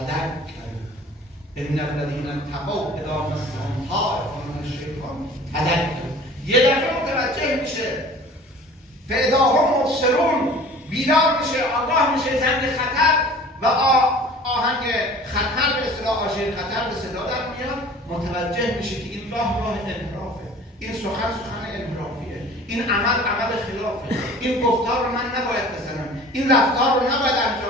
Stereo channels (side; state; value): both; normal; correlation 0.45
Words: ان الذین اتقوا اذا مسهم طائف من الشیطان تذکر. یه دفعه متوجه میشه، فاذا هم مبصرون، بیدار میشه، آگاه میشه زنگ خطر و آهنگ خطر به اصطلاح، آژیر خطر به صدا در میاد. متوجه میشه که این راه انحرافه، این سخن انحرافیه، این عمل خلافه، این گفتار رو من نباید بزنم، این رفتار رو نباید